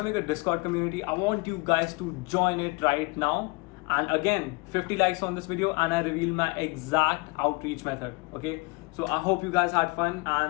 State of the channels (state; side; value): quieter; right; 27.1 dB